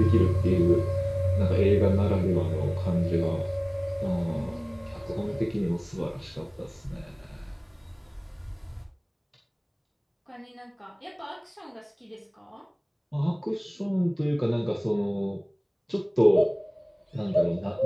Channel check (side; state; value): both; identical; correlation 1.00